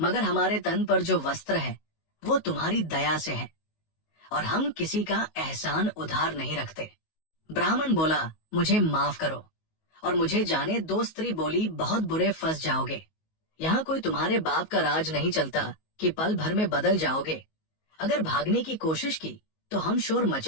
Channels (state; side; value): late; right; 19 ms